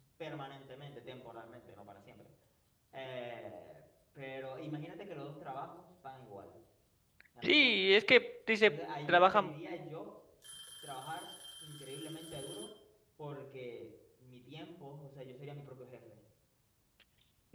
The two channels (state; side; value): identical; both; correlation 1.00